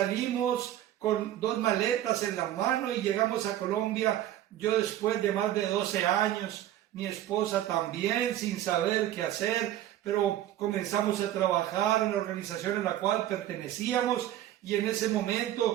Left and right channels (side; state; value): left; quieter; 12.6 dB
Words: con 2 maletas en la mano y llegamos a Colombia, yo después de más de 12 años, mi esposa también, sin saber qué hacer, pero comenzamos a trabajar en la organización en la cual pertenecíamos, y en ese